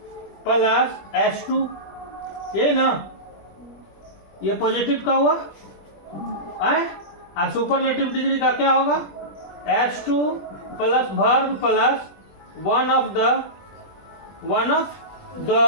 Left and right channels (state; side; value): late; right; 20 ms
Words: plus S2, ये ना, ये पॉजिटिव का हुआ है। और सुपरलेटिव डिग्री का क्या होगा, S2 plus verb plus one of the,